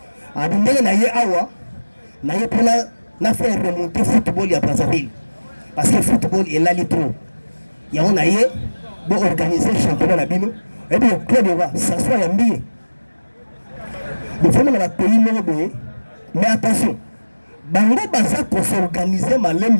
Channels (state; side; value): inverted; both; correlation -1.00